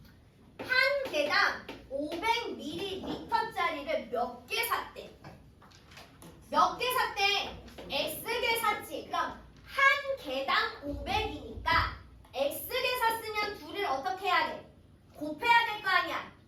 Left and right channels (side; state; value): both; identical; correlation 1.00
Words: 한 개당 500ml짜리를 몇 개 샀대? 몇 개 샀대? X개 샀지. 그럼 한 개당 500이니까 X개 샀으면 둘을 어떻게 해야 돼? 곱해야 될 거 아니야.